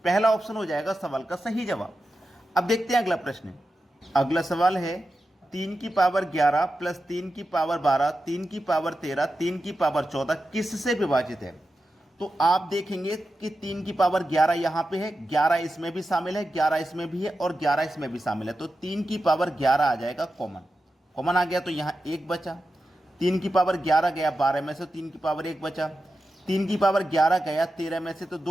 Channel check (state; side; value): normal; both; correlation 0.91